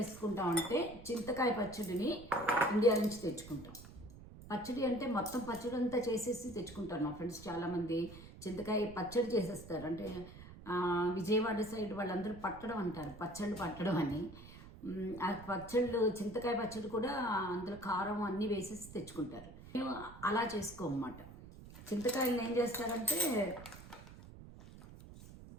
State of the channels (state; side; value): noise; right; rumble, 16 dB below the sound